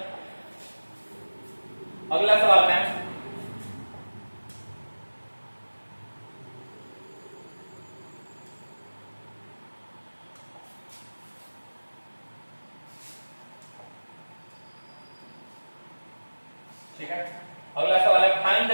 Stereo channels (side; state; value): both; inverted; correlation -1.00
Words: अगला सवाल में अगला सवाल है find the